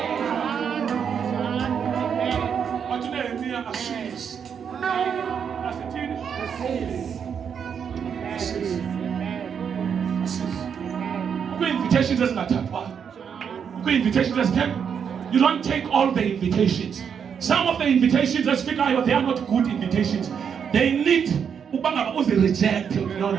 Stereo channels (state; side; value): quieter; left; 7.3 dB